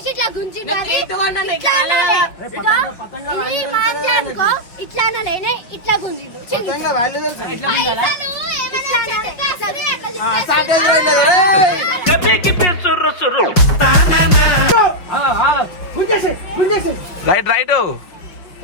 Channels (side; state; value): right; late; 5.6 ms